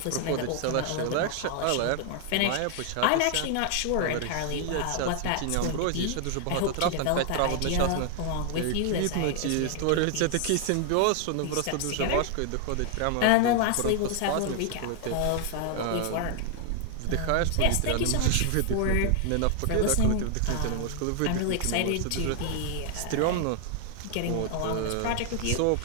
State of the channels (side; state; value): both; different; correlation 0.00